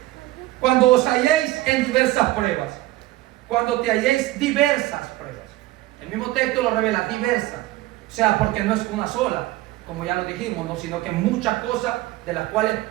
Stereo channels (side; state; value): left; quieter; 17.4 dB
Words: cuando os halléis en diversas pruebas, cuando te halléis diversas pruebas. El mismo texto lo revela, diversas. O sea, porque no es una sola, como ya lo dijimos, ¿no? Sino que muchas cosas de las cuales